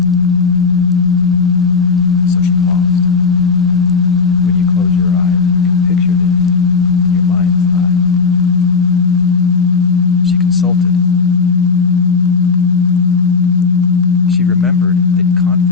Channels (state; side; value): quieter; right; 4.9 dB